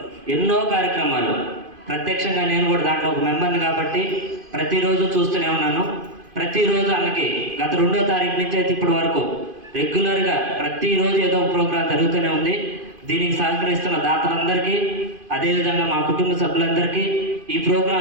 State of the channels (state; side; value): late; left; 2.5 ms